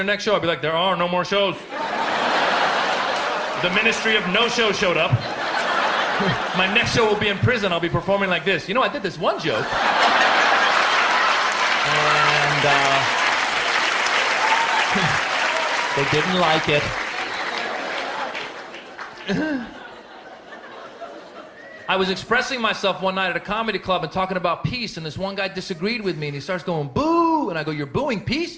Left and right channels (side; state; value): both; identical; correlation 1.00